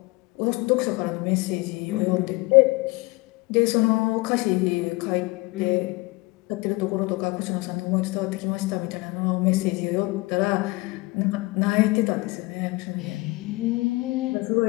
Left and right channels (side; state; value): right; quieter; 23.5 dB